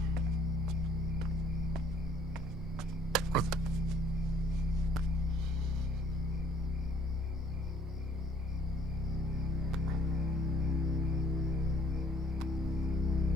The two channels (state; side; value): normal; both; correlation 0.59